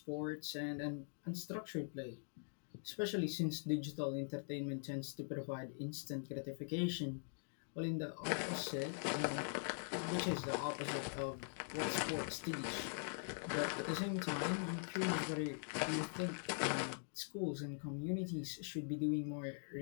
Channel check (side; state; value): right; silent; digital silence